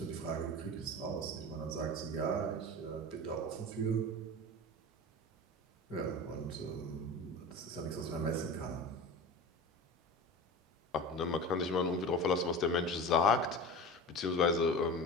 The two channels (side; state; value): both; normal; correlation 0.31